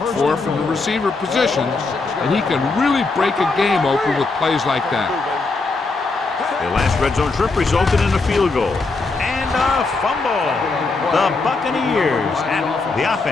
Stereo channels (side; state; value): right; quieter; 3.8 dB